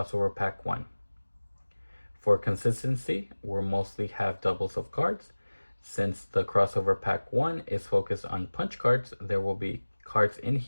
pack 1. For consistency, we'll mostly have doubles of cards. Since the crossover pack 1 is focused on punch cards, there will be cards in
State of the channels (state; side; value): inverted; both; correlation -1.00